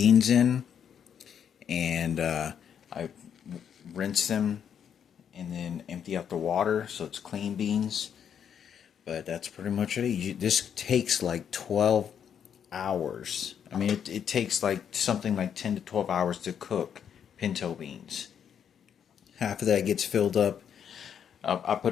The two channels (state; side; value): quieter; right; 8.3 dB